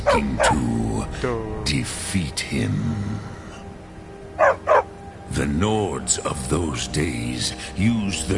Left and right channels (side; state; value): both; identical; correlation 1.00